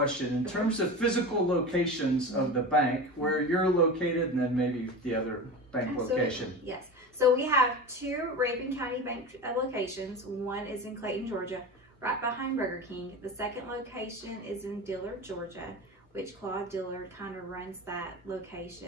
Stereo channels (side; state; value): both; normal; correlation 0.29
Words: In terms of physical locations of the bank, where you're located, and then maybe the other bank location. Yes. So we have two Rabun County Bank locations. One is in Clayton, Georgia, right behind Burger King. The second location is in Dillard, Georgia, which Claude Dillard kind of runs that